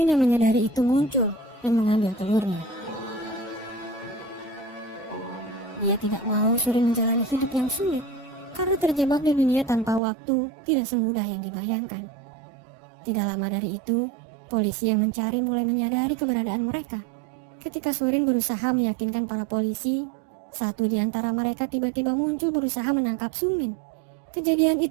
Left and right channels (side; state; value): left; drops out; at 10.0 s